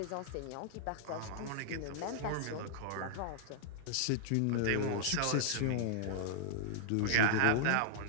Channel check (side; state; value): both; different; correlation -0.01